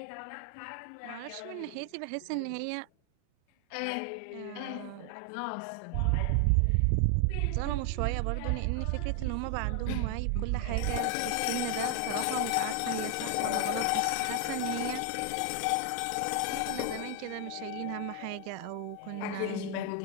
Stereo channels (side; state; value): both; different; correlation 0.00